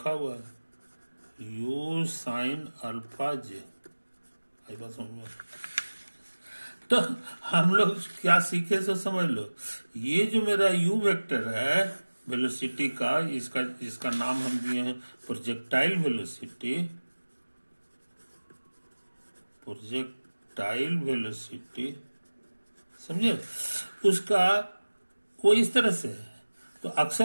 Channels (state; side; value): inverted; both; correlation -1.00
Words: हुआ है, यू साइन अल्फा जे। आई बात समझ में? तो हम लोग क्या सीखे सो समझ लो, ये जो मेरा यू वेक्टर है वेलोसिटी का, इसका नाम हम दिए हैं प्रोजेक्टाइल वेलोसिटी, प्रोजेक्टाइल वेलोसिटी। समझे, उसका वो इस तरह से है। तो